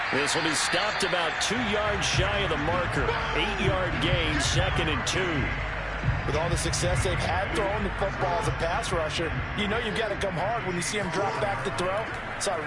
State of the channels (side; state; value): both; identical; correlation 1.00